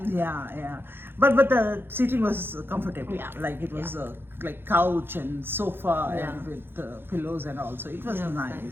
Yeah. But the seating was comfortable. Yeah. Like it was like couch and sofa Yeah. and with pillows and all. So it was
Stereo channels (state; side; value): late; left; 0.10 ms